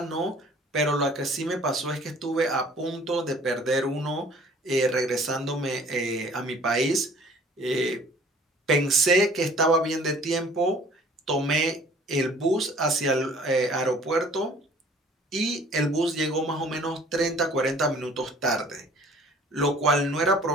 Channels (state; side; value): normal; both; correlation 0.52